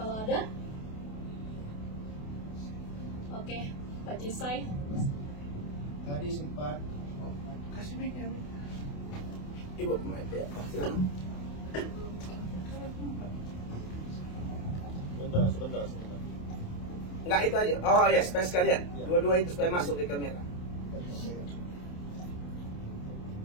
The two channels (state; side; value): late; right; 28 ms